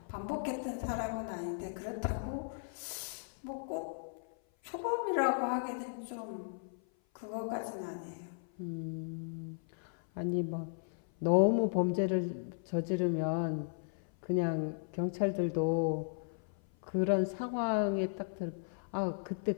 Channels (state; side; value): silent; right; 54 dB below the other